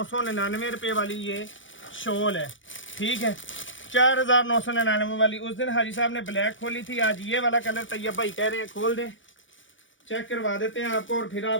रुपये वाली ये शॉल है, ठीक है, 4999 वाली। उस दिन हाजी साहब ने ब्लैक खोली थी, आज ये वाला कलर तैयब भाई कह रहे हैं खोल दें, चेक करवा देते हैं आपको और फिर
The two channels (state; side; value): late; right; 0.56 ms